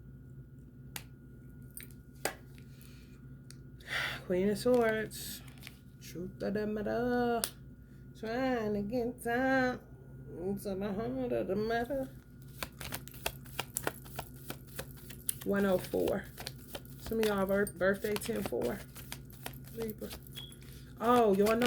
Queen of Swords. Truth of the matter. Trying to get down to the heart of the matter. 104. Some of y'all birthday 10-4. Libra. Oh, y'all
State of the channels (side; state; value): both; identical; correlation 1.00